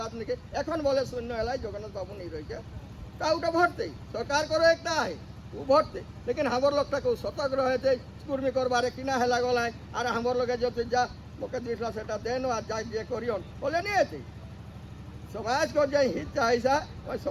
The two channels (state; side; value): identical; both; correlation 1.00